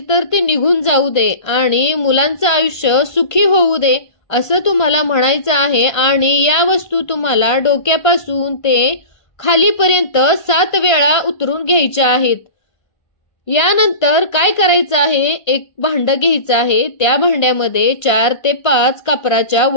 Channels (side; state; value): right; late; 1.5 ms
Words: तर ती निघून जाऊ दे आणि मुलांचं आयुष्य सुखी होऊ दे असं तुम्हाला म्हणायचं आहे। आणि या वस्तू तुम्हाला डोक्यापासून ते खालीपर्यंत 7 वेळा उतरून घ्यायच्या आहेत। यानंतर काय करायचं आहे, एक भांड घ्यायचं आहे, त्या भांड्यामध्ये 4 ते 5 कापराच्या